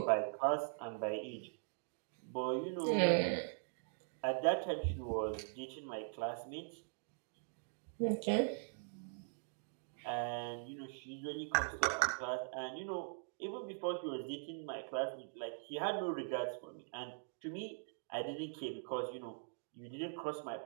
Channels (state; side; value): silent; left; digital silence